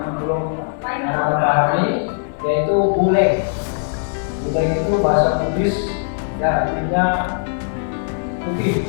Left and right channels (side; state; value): right; silent; 56 dB below the other